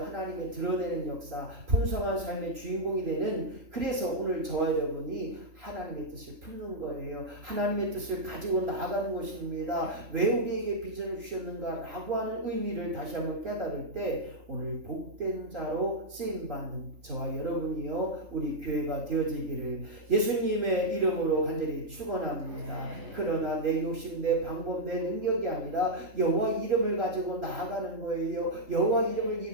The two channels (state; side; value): late; left; 3.8 ms